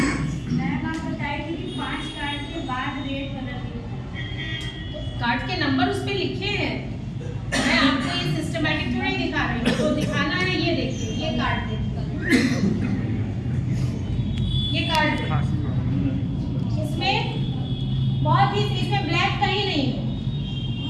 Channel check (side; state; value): both; identical; correlation 1.00